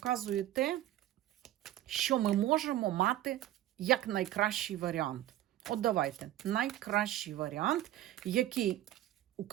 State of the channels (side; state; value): left; quieter; 13.7 dB